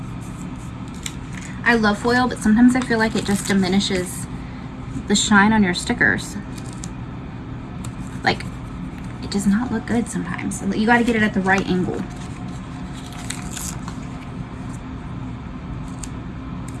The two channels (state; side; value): identical; both; correlation 1.00